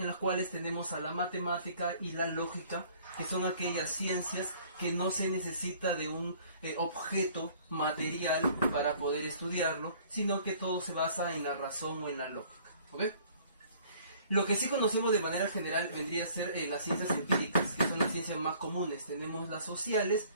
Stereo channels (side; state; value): both; inverted; correlation -0.55